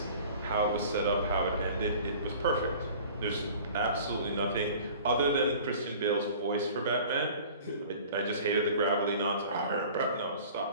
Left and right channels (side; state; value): both; inverted; correlation -0.45